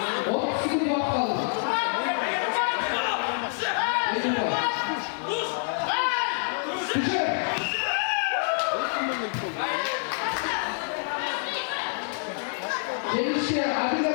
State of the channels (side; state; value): right; silent; 60 dB below the other